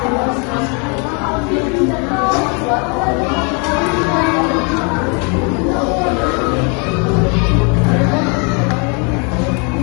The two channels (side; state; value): right; quieter; 34.5 dB